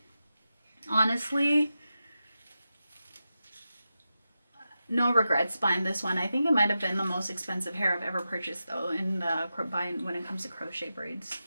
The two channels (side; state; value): both; inverted; correlation -0.91